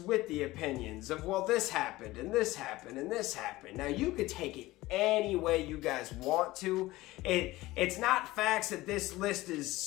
the opinions of, well, this happened, and this happened, and this happened. Now, you could take it any way you guys want to. It's not facts that this list is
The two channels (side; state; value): right; quieter; 18.4 dB